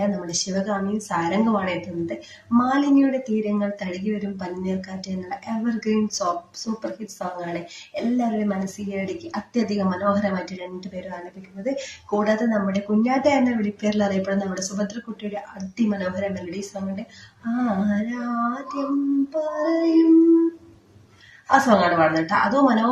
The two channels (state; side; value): identical; both; correlation 1.00